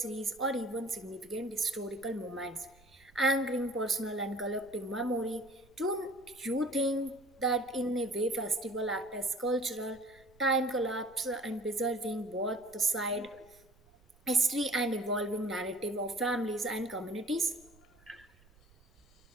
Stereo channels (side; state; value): right; noise; rumble, 28 dB below the sound